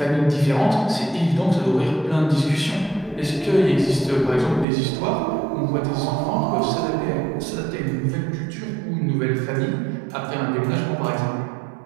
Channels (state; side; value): drops out; left; at 4.7 s